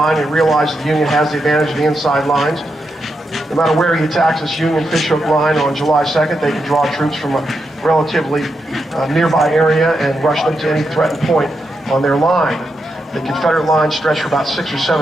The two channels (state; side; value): normal; both; correlation 0.84